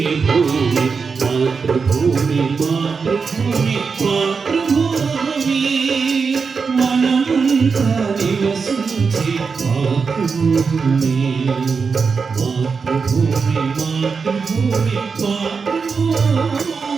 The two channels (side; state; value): left; quieter; 5.2 dB